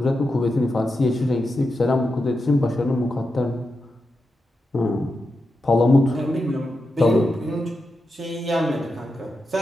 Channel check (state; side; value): normal; both; correlation 0.88